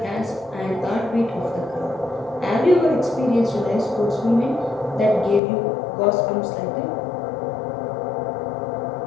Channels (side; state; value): right; drops out; at 5.4 s